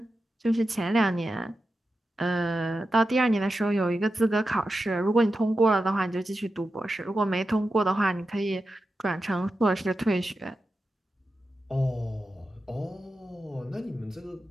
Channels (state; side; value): normal; both; correlation 0.90